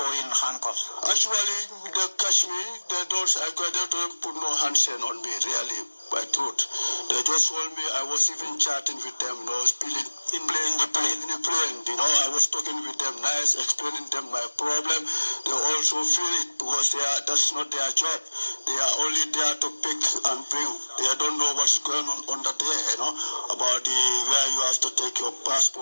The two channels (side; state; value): both; inverted; correlation -1.00